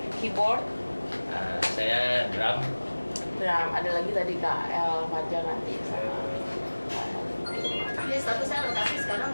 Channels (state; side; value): inverted; both; correlation -1.00